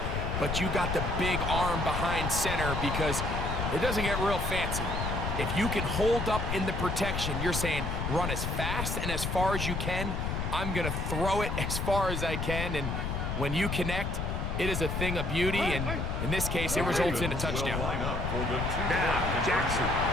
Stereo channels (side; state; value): left; noise; rumble, 2 dB below the sound